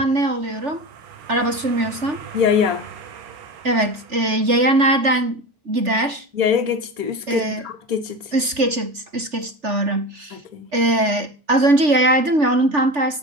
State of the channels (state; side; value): late; left; 3.4 ms